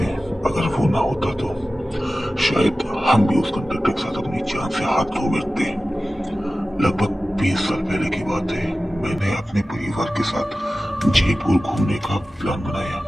अगर वो ना होता तो शायद हम भी उस कंडक्टर के साथ अपनी जान से हाथ धो बैठते। लगभग 20 साल पहले की बात है। मैंने अपने परिवार के साथ जयपुर घूमने का प्लान बनाया।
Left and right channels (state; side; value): normal; both; correlation 0.95